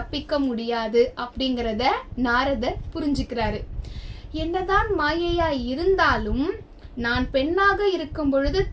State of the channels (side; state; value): both; identical; correlation 1.00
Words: முடியாது அப்படிங்கிறத நாரதர் புரிஞ்சுக்கிறாரு. என்னதான் மாயையா இருந்தாலும் நான் பெண்ணாக இருக்கும் பொழுது